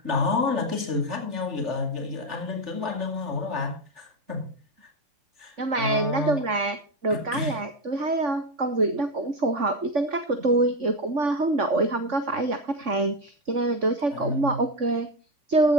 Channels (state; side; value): late; left; 3.5 ms